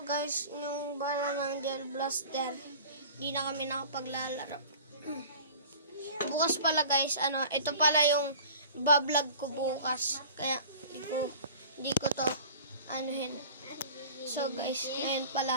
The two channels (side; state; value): both; inverted; correlation -0.42